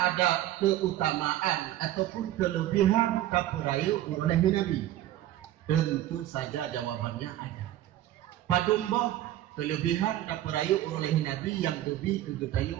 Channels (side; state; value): left; quieter; 13.7 dB